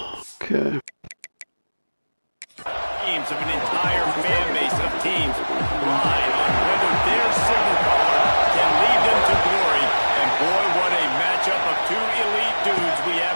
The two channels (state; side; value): inverted; both; correlation -1.00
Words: Okay. Teams of an entire fan base of teams ride on whether their signal caller can lead them to glory. And boy, what a matchup of two elite dudes we